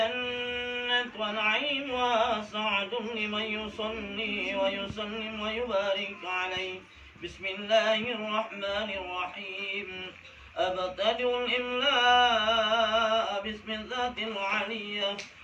ونعيم وسعد لمن يصلي ويسلم ويبارك عليه. بسم الله الرحمن الرحيم. أبتدئ الإملاء باسم الذات العلية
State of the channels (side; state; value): both; identical; correlation 1.00